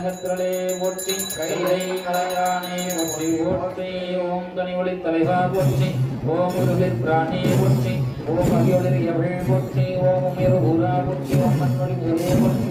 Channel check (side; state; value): both; identical; correlation 1.00